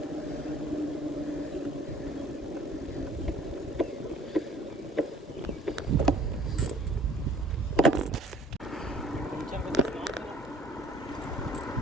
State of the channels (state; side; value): normal; both; correlation 0.52